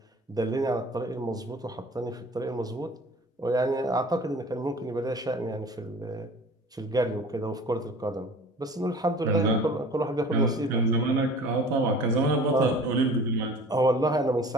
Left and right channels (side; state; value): both; normal; correlation 0.44